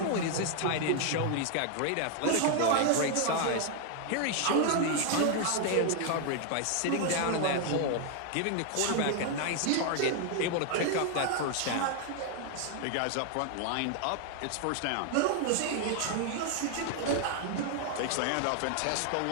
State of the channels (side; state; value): both; different; correlation 0.00